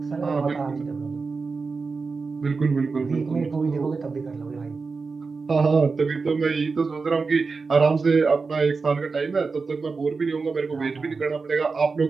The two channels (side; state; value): left; quieter; 4.5 dB